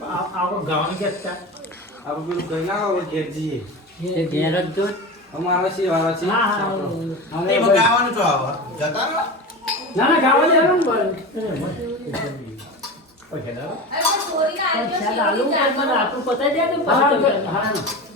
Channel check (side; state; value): both; normal; correlation 0.28